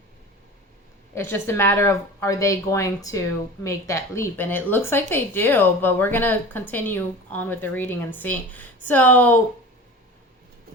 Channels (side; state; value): both; normal; correlation 0.35